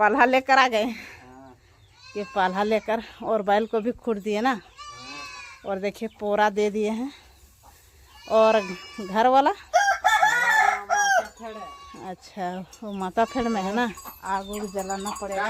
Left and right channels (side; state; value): both; identical; correlation 1.00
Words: लेकर आ गए। ये पाला लेकर और बैल को भी खूट दिए ना। और देखिए पोरा दे दिए हैं। और घर वाला अच्छा वो माता फेड़ में है ना, आग उग जलाना पड़ेगा। क्या